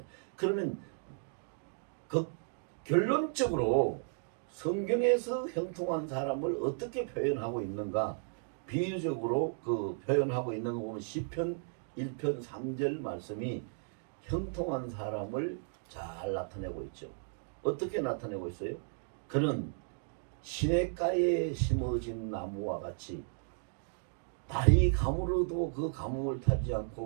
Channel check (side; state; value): left; silent; digital silence